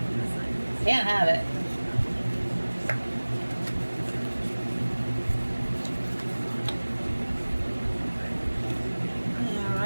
Can't have it.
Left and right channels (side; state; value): both; inverted; correlation -1.00